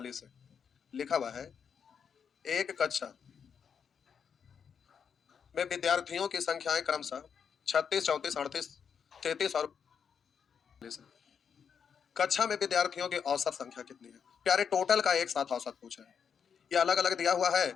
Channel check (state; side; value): quieter; right; 7.0 dB